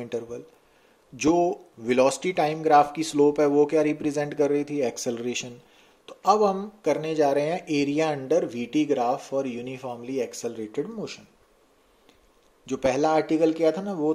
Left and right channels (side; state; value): both; identical; correlation 1.00